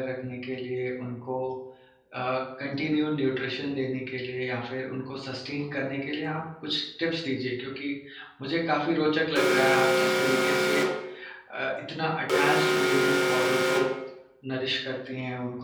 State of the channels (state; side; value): identical; both; correlation 1.00